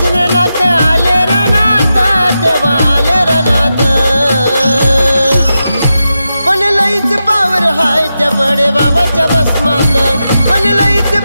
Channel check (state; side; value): inverted; both; correlation -0.89